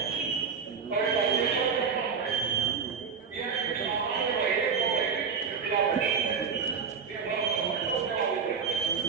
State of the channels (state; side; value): quieter; left; 6.0 dB